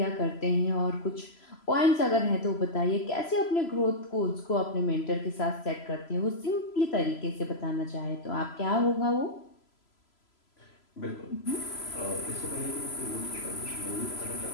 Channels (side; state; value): right; late; 3.0 ms